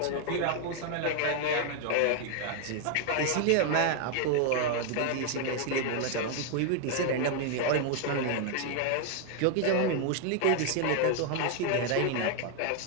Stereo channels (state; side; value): different; both; correlation 0.00